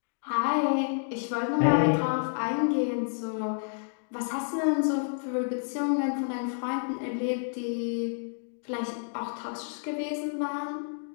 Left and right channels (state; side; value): silent; right; digital silence